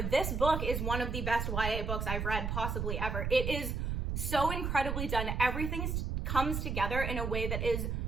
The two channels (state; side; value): noise; right; rumble, 1 dB below the sound